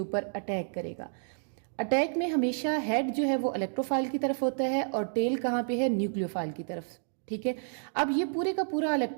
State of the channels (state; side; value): silent; left; digital silence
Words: अटैक करेगा। अटैक में हमेशा हेड जो है वो इलेक्ट्रोफाइल की तरफ होता है और टेल कहाँ पे है, न्यूक्लियोफाइल की तरफ, ठीक है। अब ये पूरे का पूरा